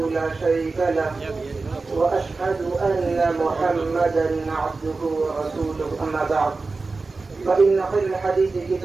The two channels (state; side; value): quieter; left; 3.9 dB